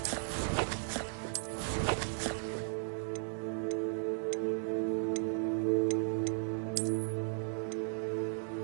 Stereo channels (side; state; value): left; silent; 54 dB below the other